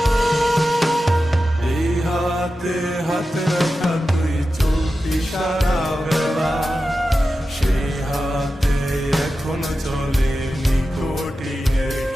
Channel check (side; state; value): both; normal; correlation 0.92